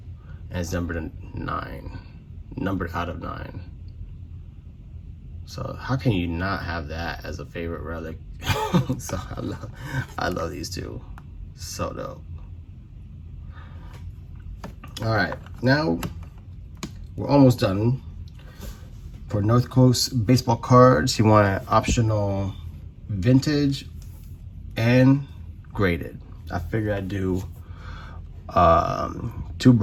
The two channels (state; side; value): identical; both; correlation 1.00